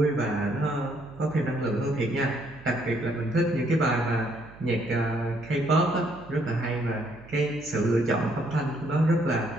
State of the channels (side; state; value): right; noise; hum, 21 dB below the sound